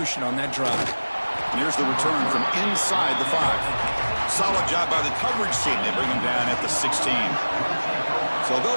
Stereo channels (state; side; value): inverted; both; correlation -1.00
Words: on that drive. And here's the return from inside the 5. Solid job by the coverage team. They bring him down at the 16. So